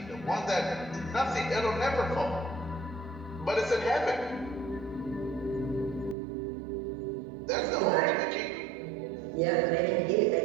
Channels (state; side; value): drops out; left; at 6.2 s